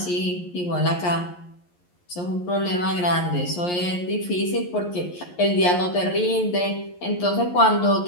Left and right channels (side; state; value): right; late; 11 ms